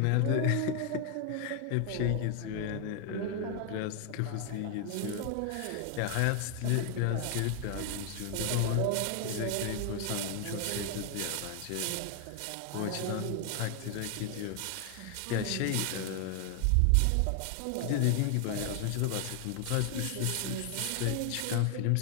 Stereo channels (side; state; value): both; different; correlation 0.00